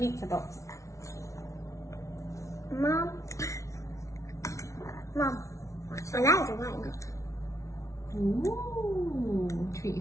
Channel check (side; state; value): right; late; 0.14 ms